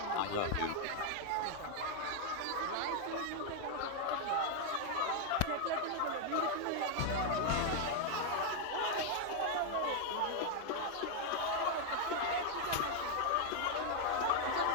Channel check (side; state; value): both; different; correlation 0.00